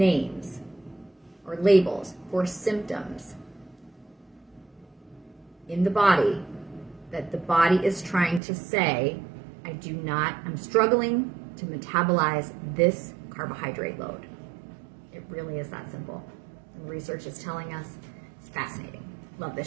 or labels for symptoms in the body that the body is trying to say, I'm struggling to metabolize this carbohydrate load. It really is that simple. And research is telling us. It's fascinating. Love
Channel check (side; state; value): left; drops out; at 8.4 s